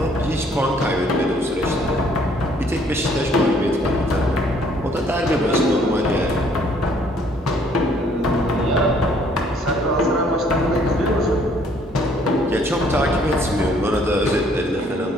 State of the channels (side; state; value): both; normal; correlation 0.62